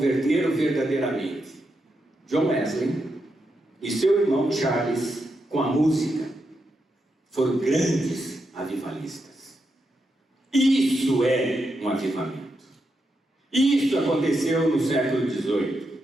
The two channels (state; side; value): normal; both; correlation 0.84